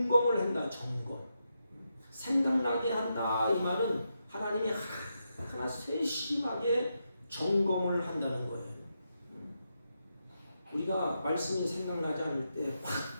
한다. 점검. 생각나게 한다. 이 말은 하나님이 하나하나 세심하게 점검을 한다는 거예요. 우리가 말씀이 생각나지 않을 때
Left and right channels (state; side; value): inverted; both; correlation -0.84